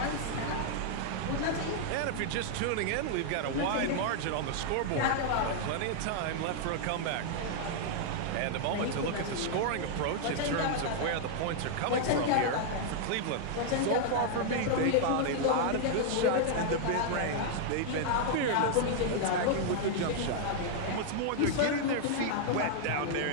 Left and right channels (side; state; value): both; different; correlation -0.01